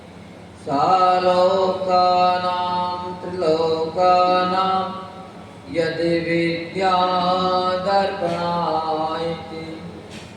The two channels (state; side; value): identical; both; correlation 1.00